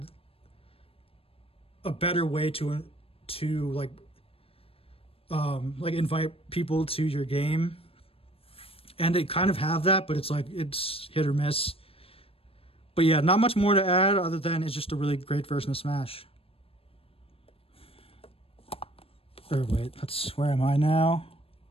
a better way to invite people to your game, and they kind of have that, but it's hit or miss. But yeah, not much more to add other than it's just a really great version of Smash. Or wait, where am I now?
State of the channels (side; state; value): right; late; 0.28 ms